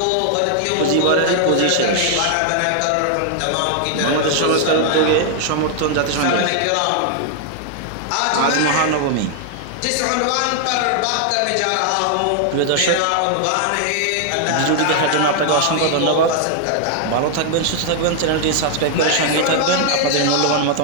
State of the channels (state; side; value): different; both; correlation 0.00